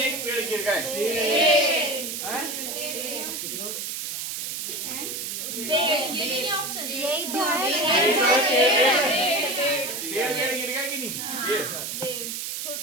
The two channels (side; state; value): right; noise; hiss, 4 dB below the sound